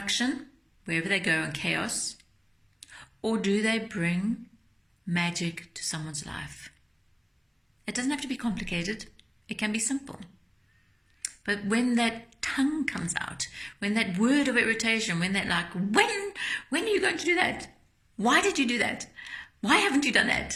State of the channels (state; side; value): identical; both; correlation 1.00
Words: wherever they go and chaos? Or do they bring magic to someone's life? It doesn't have to be complicated. It can be simple. But when that tongue comes out, when that word of irritation, when that when are you going to do that? Why did you do that? Why haven't you done